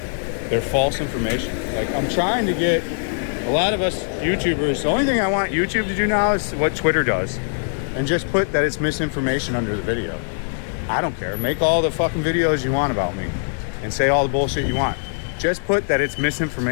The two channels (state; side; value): silent; right; digital silence